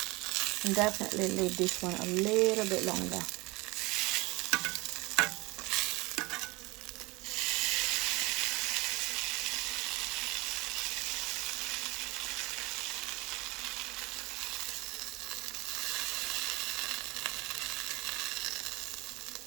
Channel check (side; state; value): left; quieter; 23.5 dB